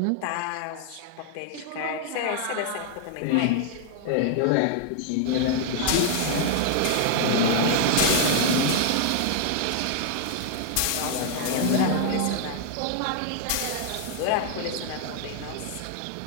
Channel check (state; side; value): different; both; correlation 0.00